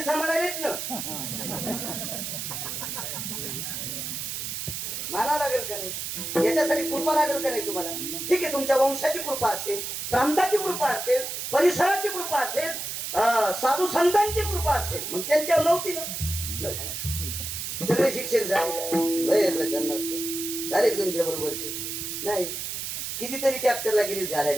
सांभाळायलेत ना. माना लागेल का नाही? याच्यासाठी कृपा लागेल का नाही तुम्हाला? ठीक आहे, तुमच्या वंशाची कृपा असेल, प्रांताची कृपा असेल, परिसराची कृपा असेल, साधू संतांची कृपा असेल, मग त्यांच्यावर नव्हती ना. सगळे शिक्षक झाले झाले तुमच्या बरोबरचे नाही. कितीतरी ट्रॅक्टरला गिरीस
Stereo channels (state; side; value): noise; right; hiss, 4 dB below the sound